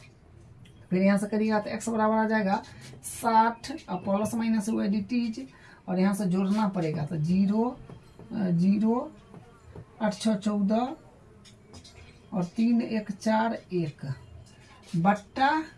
फिर यहाँ से करिएगा तो x बराबर आ जाएगा 60 और प्लस माइनस हुआ एडिटीज, और यहाँ से जोड़ना पड़ेगा तो 0 0 8 6 14 और 3 1 4 1 बट्टा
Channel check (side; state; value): both; identical; correlation 1.00